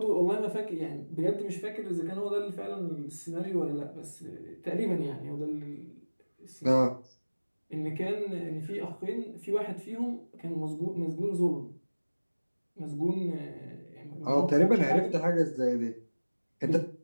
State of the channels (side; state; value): both; inverted; correlation -1.00